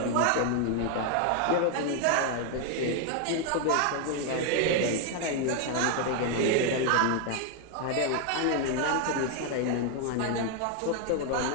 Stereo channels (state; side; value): different; both; correlation 0.00